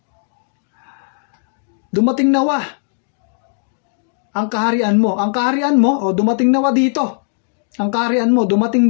Dumating nawa ang kaharian mo. Ang kaharian mo, o dumating nawa dito. Ang kaharian mo, dumating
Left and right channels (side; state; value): right; silent; digital silence